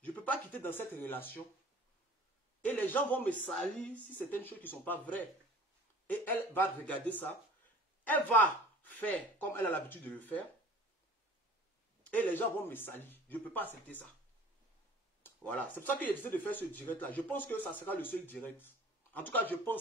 Je ne peux pas quitter dans cette relation Et les gens vont me salir si certaines choses qui ne sont pas vraies. Et elle va regarder ça. Elle va faire comme elle a l'habitude de le faire. Et les gens vont me salir. Je ne peux pas accepter ça. Voilà. C'est pour ça que j'ai décidé de faire ce direct-là. Je pense que ça sera le seul direct. En tout cas, je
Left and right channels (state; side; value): normal; both; correlation 0.46